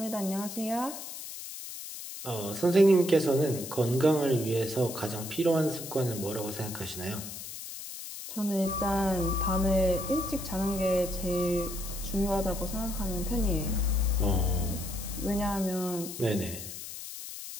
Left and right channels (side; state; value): left; noise; hiss, 10 dB below the sound